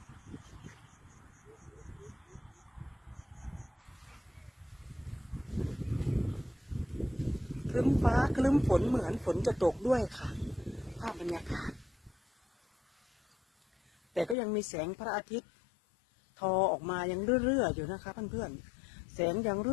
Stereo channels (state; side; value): drops out; right; at 14.4 s